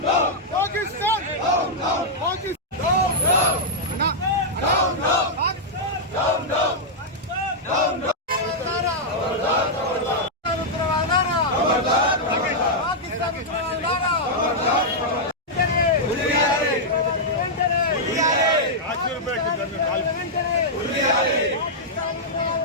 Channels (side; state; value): both; normal; correlation -0.07